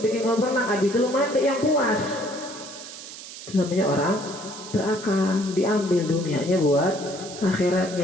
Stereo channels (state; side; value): noise; right; hiss, 13 dB below the sound